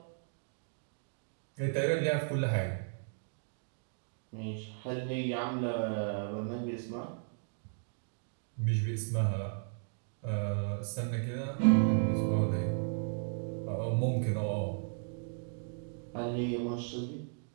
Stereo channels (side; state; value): left; silent; digital silence